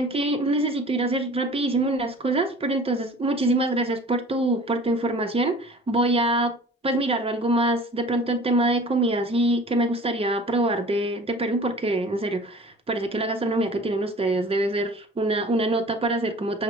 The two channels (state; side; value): normal; both; correlation 0.45